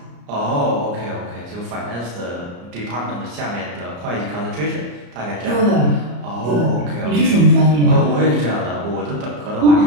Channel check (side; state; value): left; late; 34 ms